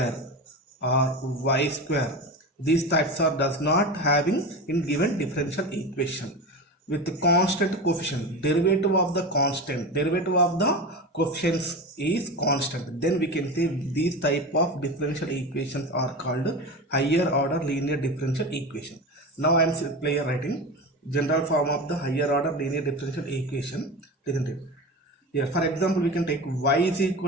or y square. These types are does not having in given differential equation with the constant coefficient. Derivative of the coefficients is constant, then we can say these type of differential equations are called higher order linear differential equation. Now I am simply writing general form of the higher order linear differential equation, isn't it? Here, for example, we can take y is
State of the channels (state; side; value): normal; both; correlation 0.26